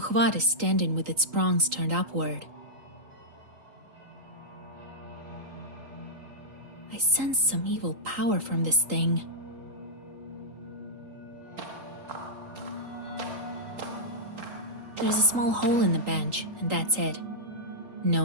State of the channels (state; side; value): late; left; 3.8 ms